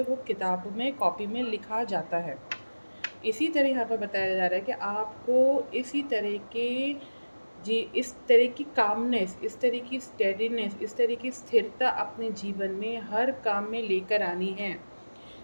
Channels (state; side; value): inverted; both; correlation -1.00